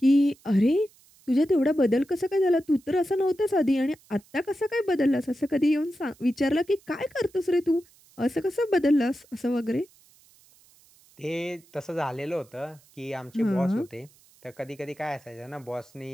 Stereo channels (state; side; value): noise; right; hiss, 29 dB below the sound